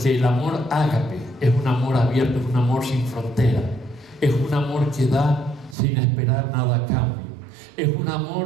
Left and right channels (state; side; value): drops out; left; at 5.8 s